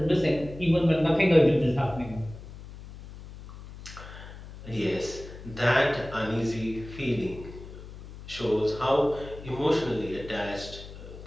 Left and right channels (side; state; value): left; noise; hum, 15 dB below the sound